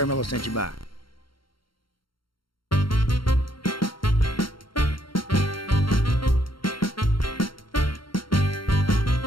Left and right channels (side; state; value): right; late; 0.73 ms